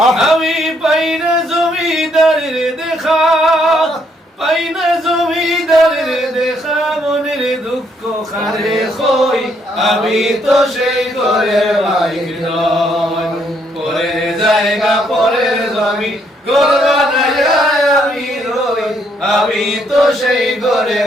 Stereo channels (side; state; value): both; normal; correlation 0.71